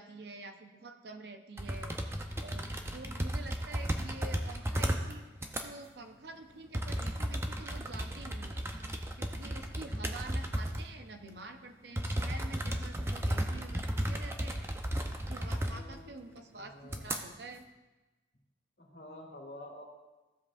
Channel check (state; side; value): normal; both; correlation 0.83